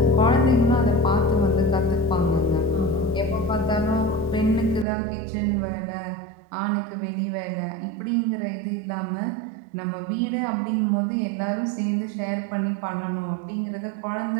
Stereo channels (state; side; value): drops out; left; at 4.9 s